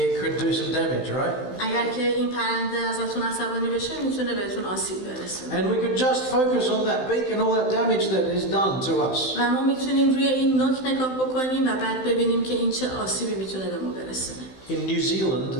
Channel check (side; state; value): right; late; 16 ms